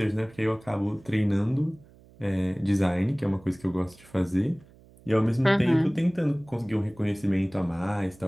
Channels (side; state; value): right; noise; hum, 25 dB below the sound